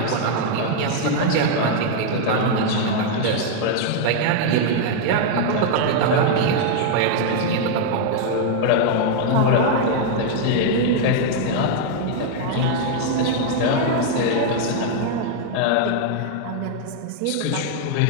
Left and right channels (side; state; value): both; different; correlation 0.00